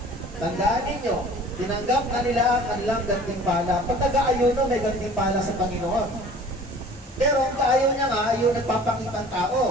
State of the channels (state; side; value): normal; both; correlation 0.47